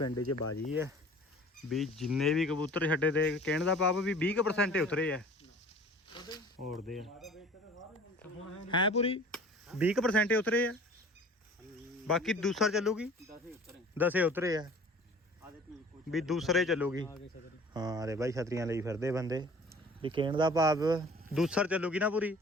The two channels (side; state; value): both; normal; correlation 0.47